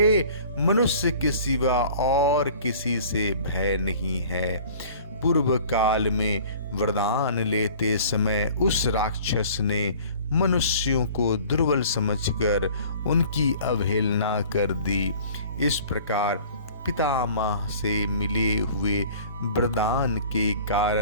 मनुष्य के सिवा और किसी से भय नहीं है। पूर्व काल में वरदान लेते समय उस राक्षस ने मनुष्यों को दुर्बल समझकर उनकी अवहेलना कर दी। इस प्रकार पितामह से मिले हुए वरदान के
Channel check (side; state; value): both; inverted; correlation -0.48